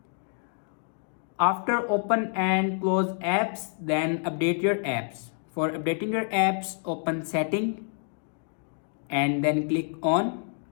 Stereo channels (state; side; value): silent; right; 59 dB below the other